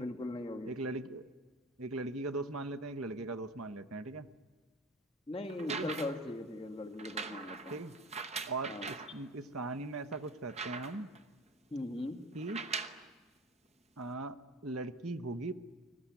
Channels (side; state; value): both; normal; correlation 0.35